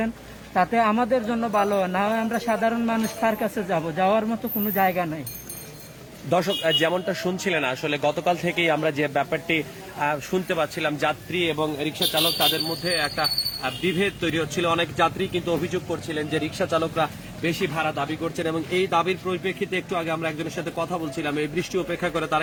তাতে আমাদের জন্য ভালো হয়। না হয় আমরা সাধারণ মানুষ কার কাছে যাব? যাওয়ার মতো কোনো জায়গা নাই। দর্শক যেমনটা শুনছিলেন আসলে গতকাল থেকেই আমরা যে ব্যাপারটি শুনতে পাচ্ছিলাম, যাত্রী এবং রিক্সা চালক তাদের মধ্যে একটা বিভেদ তৈরি হচ্ছিল। অনেক যাত্রী কিন্তু অভিযোগ করছিলেন যে রিক্সা চালকরা বেশি ভাড়া দাবি করছেন এবং এই দাবির পরিপ্রেক্ষিতে একটু আগে আমরা একজনের সাথে কথা বলছিলাম, এই বৃষ্টি উপেক্ষা করে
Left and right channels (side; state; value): both; identical; correlation 1.00